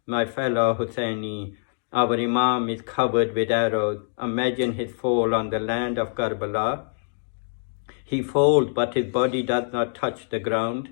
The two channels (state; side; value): silent; right; digital silence